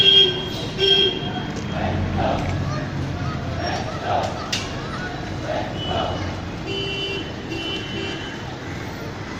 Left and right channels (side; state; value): both; identical; correlation 1.00